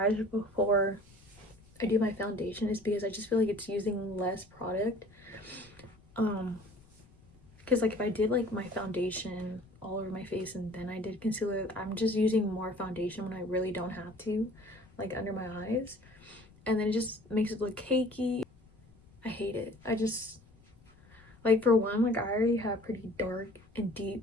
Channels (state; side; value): noise; left; rumble, 27 dB below the sound